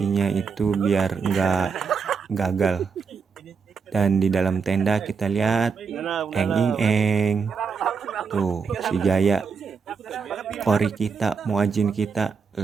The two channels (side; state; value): left; quieter; 5.6 dB